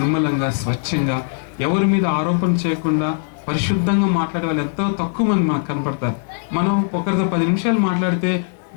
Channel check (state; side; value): silent; right; 66 dB below the other